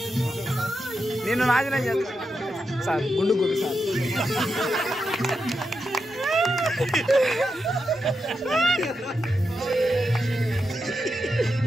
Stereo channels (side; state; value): both; normal; correlation 0.86